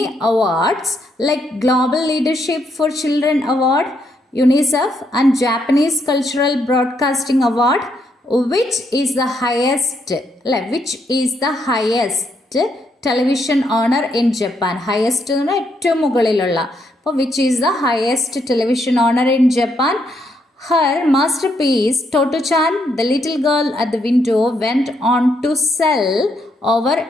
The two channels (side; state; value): both; normal; correlation 0.76